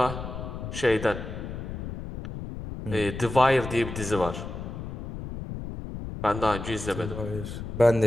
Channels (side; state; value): left; noise; rumble, 8 dB below the sound